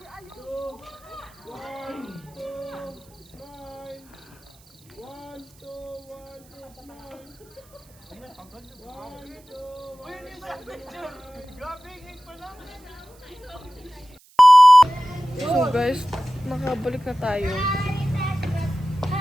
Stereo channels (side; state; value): right; noise; hiss, 28 dB below the sound